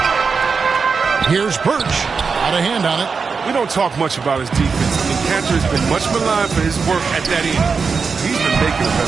Here's Birch. Out of hand on it. We don't talk much about his defense. And Kanter has been much maligned for his work at that end. He's been making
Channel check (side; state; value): left; quieter; 5.2 dB